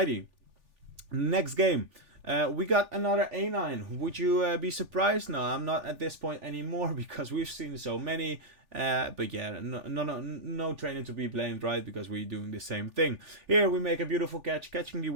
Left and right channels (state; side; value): late; left; 3.4 ms